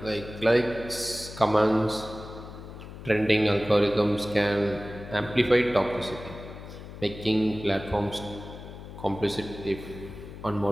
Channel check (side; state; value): left; noise; hum, 13 dB below the sound